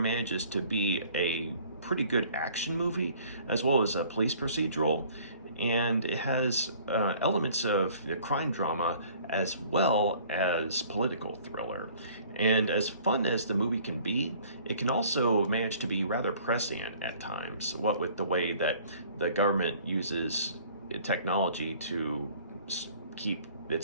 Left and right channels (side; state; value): both; inverted; correlation -0.54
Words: to be a pretty good action movie as well as a police procedural, and it has elements of the crime drama as well as political thriller. And as fun as the movie can be, it can also manage to be rather prescient at times, what with the way that the government uses technology to keep